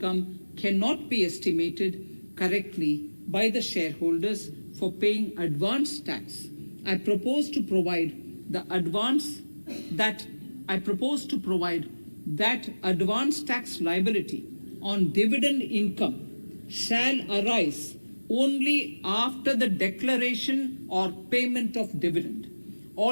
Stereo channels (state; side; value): inverted; both; correlation -1.00